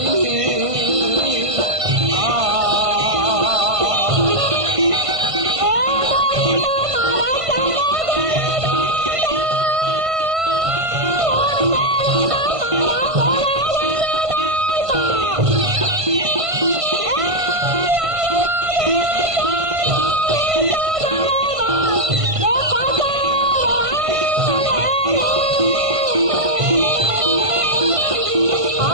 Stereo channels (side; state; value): left; late; 1.5 ms